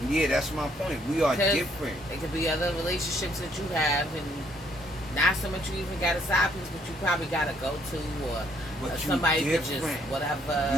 Yeah, that's my point. We are different. It could be other relationships that you have, and not so much you even got a side piece, but you probably got to go to, or somebody that just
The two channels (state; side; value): normal; both; correlation 0.67